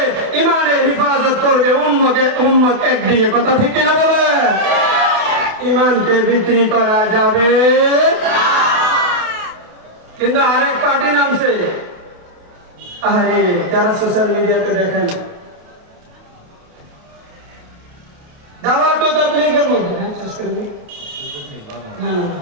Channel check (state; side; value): late; left; 28 ms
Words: ইমানের হিফাজত করবে, উম্মত একদিকে। কথা ঠিক কিনা বলে? ইমানকে বিক্রি করা যাবে কিন্তু আরেক পার্টি নামছে। আরে যারা সোশ্যাল মিডিয়াতে দেখেন, দাওয়াত ও তাবলীগের মধ্যে